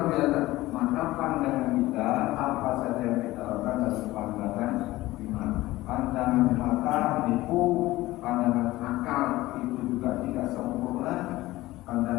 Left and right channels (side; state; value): right; quieter; 17.7 dB